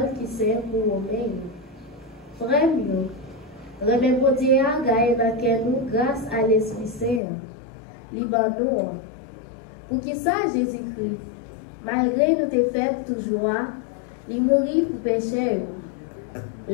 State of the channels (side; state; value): right; drops out; at 7.2 s